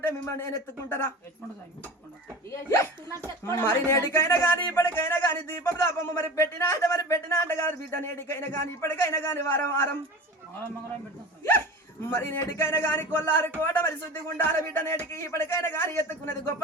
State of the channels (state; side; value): normal; both; correlation 0.34